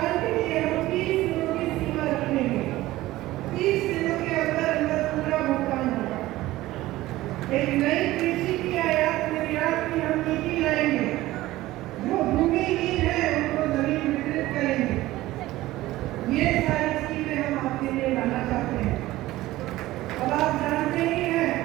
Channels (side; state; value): left; quieter; 16.9 dB